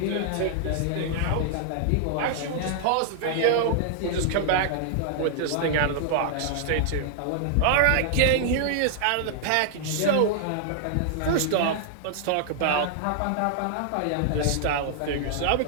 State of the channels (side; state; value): both; different; correlation -0.01